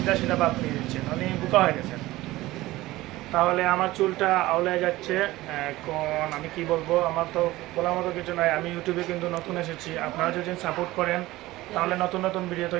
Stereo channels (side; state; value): left; quieter; 17.9 dB